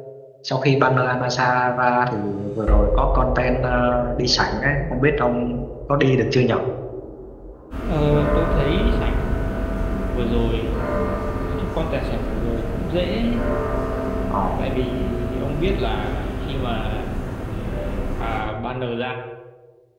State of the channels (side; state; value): both; identical; correlation 1.00